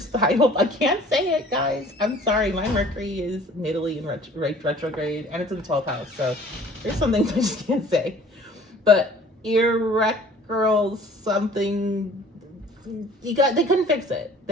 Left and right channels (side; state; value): both; normal; correlation 0.51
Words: I can't say it, guys. I'm sorry. My Mercury is natively in retrograde, and it's in the 12th house. So there's some things I just can't say. But something, they couldn't fix it.